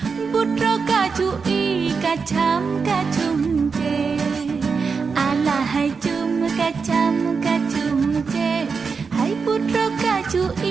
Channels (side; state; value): left; quieter; 5.2 dB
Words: putra kacui kacam kacum je. Alahai cum kacam kacum je, hai putra